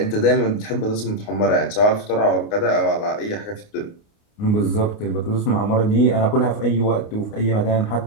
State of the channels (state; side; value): late; right; 29 ms